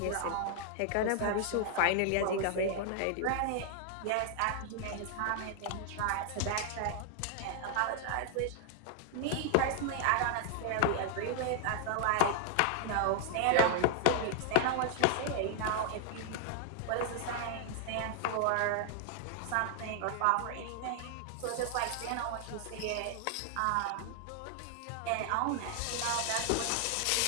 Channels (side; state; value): both; different; correlation 0.00